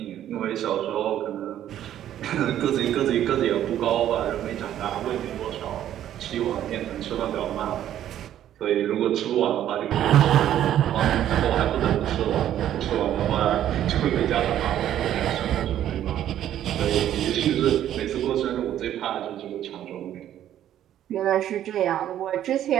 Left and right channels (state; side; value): quieter; left; 11.4 dB